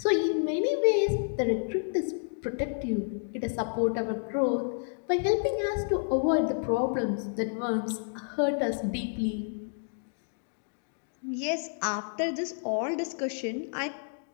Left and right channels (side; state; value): right; silent; digital silence